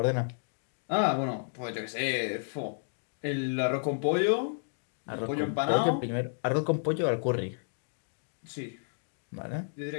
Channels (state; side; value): silent; right; digital silence